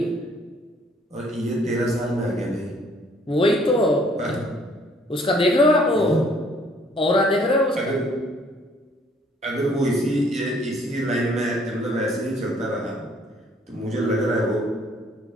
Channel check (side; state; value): both; normal; correlation 0.61